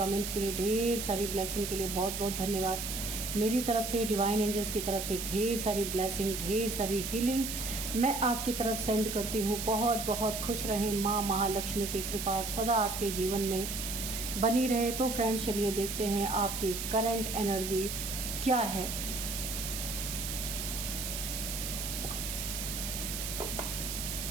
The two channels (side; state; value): right; noise; hiss, 4 dB below the sound